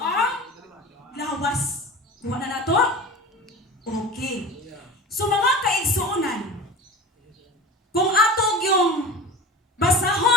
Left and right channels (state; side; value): normal; both; correlation 0.34